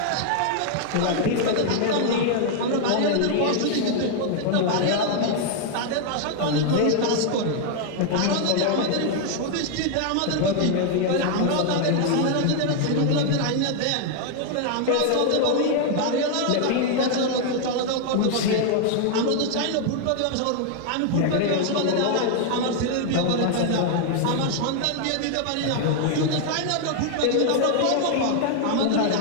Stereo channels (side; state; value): both; different; correlation 0.00